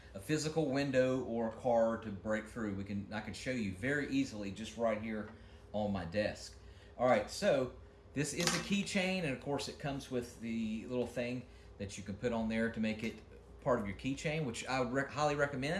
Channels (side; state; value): both; identical; correlation 1.00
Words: a physical window or a car to break through. I can show you very easily just right here on my desk. All right, so this is a keychain, and of course it comes with the little thing that you can put on there to make it part of your keychain, which I would highly